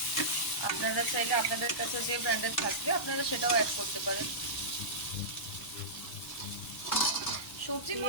আপনারা চাইলে আপনাদের কাছে যে ব্র্যান্ডের থাকবে আপনারা সেটাও অ্যাড করতে পারেন। সবজি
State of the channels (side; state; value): both; normal; correlation -0.17